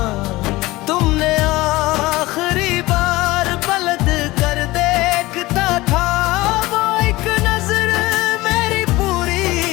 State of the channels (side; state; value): right; quieter; 19.7 dB